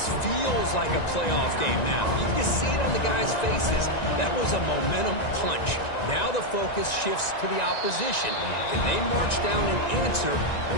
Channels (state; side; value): late; right; 1.9 ms